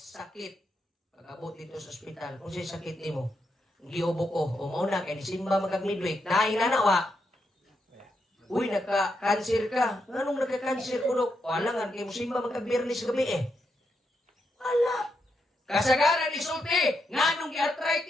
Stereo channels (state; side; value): normal; both; correlation 0.82